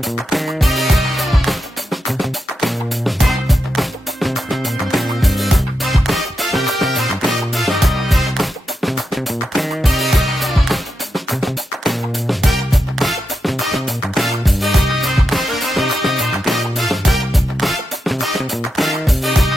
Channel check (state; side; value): normal; both; correlation 0.87